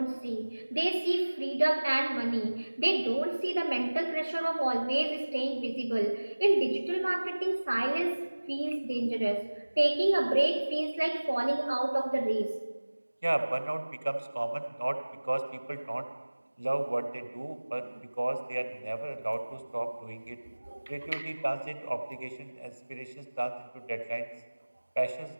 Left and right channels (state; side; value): inverted; both; correlation -1.00